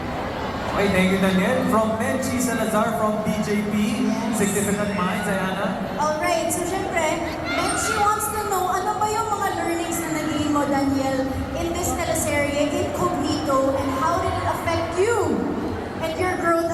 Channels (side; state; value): both; identical; correlation 1.00